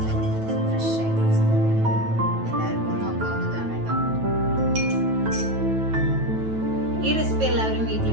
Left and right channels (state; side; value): late; left; 9.2 ms